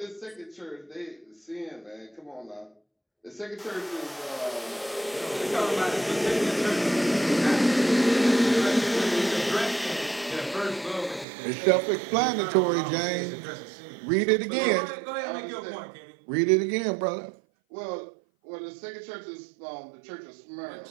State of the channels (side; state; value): left; drops out; at 11.2 s